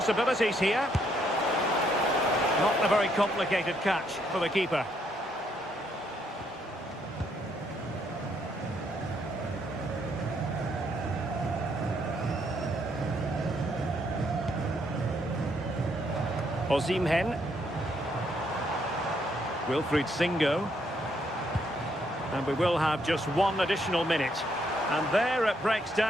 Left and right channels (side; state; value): both; normal; correlation 0.72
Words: here. Not a very complicated catch for the keeper. Osimhen. Wilfried Singo. And we will have just one additional minute. And there it breaks